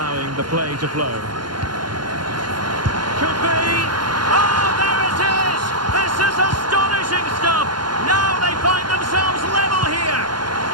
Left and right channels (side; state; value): left; late; 0.71 ms